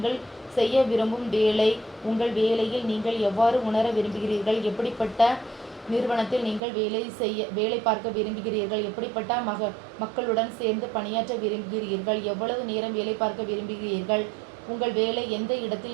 செய்ய விரும்பும் வேலை, உங்கள் வேலையில் நீங்கள் எவ்வாறு உணர விரும்புகிறீர்கள், எப்படிப்பட்ட நிறுவனத்தில் நீங்கள் வேலை பார்க்க விரும்புகிறீர்கள், எப்படிப்பட்ட மக்களுடன் சேர்ந்து பணியாற்ற விரும்புகிறீர்கள், எவ்வளவு நேரம் வேலை பார்க்க விரும்புகிறீர்கள், உங்கள் வேலை எந்த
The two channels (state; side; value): drops out; left; at 6.6 s